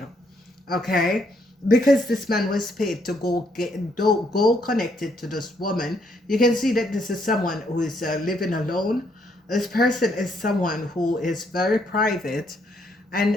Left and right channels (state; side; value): normal; both; correlation 0.72